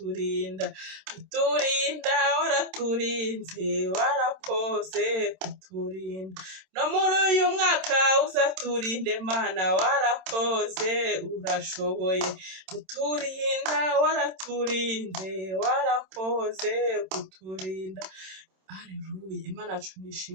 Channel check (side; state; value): left; late; 27 ms